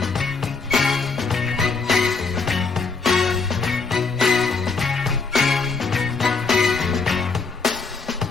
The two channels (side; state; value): right; quieter; 4.6 dB